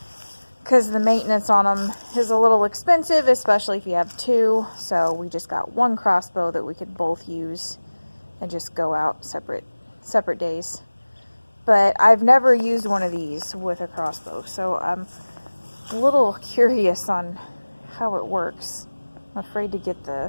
because the maintenance on them is a little expensive, especially if you have 2. So we just got 1 Crossbow that we could both use and just go out separate days. But I've never used one of these with a Crossbow, so I'm a little curious on how it works. I'm afraid to get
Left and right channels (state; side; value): inverted; both; correlation -1.00